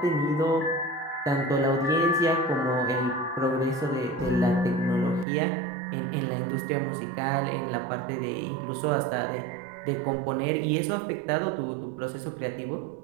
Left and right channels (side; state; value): left; drops out; at 5.2 s